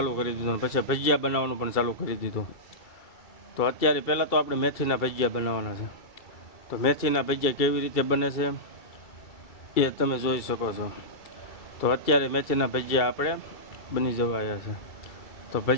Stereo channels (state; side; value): late; right; 2.3 ms